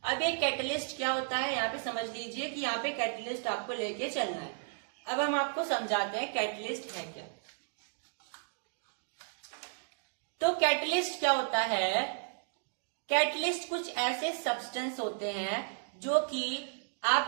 अब एक कैटलिस्ट क्या होता है यहाँ पे समझ लीजिए कि यहाँ पे कैटलिस्ट आपको लेके चलना है। अब हम आपको समझाते हैं कैटलिस्ट है क्या। तो कैटलिस्ट क्या होता है? कैटलिस्ट कुछ ऐसे सब्सटेंस होते हैं जो कि आप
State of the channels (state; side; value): silent; left; digital silence